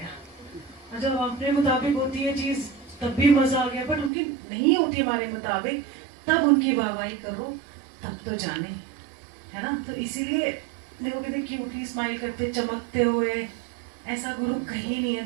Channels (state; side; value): drops out; left; at 4.1 s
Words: और जब अपने मुताबिक होती है चीज तब भी मजा आ गया, बट उनकी नहीं होती हमारे मुताबिक, तब उनकी वाहवाही करो, तब तो जाने, है ना। तो इसीलिए देखो कहते क्यूटली स्माइल करते चमकते हुए, ऐसा गुरु कहीं नहीं है